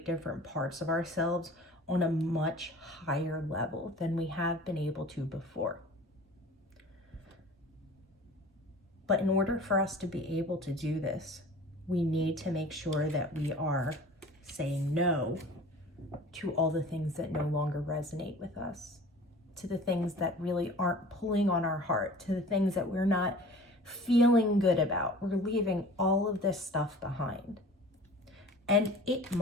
different parts of ourselves on a much higher level than we have been able to before. But in order for us to be able to do this, we need to make sure that we are saying no to all the things that no longer resonate with us, to the things that really aren't pulling on our heart, to the things that we're not feeling good about. We're leaving all of this stuff behind. And it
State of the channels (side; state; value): both; normal; correlation 0.43